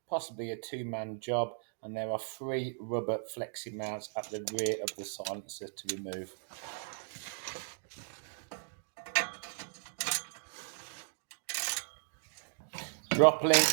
possibly a two-man job, and there are 3 rubber flexi mounts at the rear of the silencer to remove. Drop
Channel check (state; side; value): silent; left; digital silence